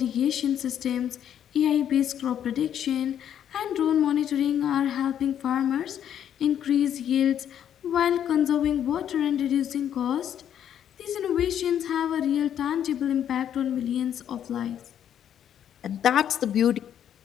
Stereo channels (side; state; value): right; quieter; 9.7 dB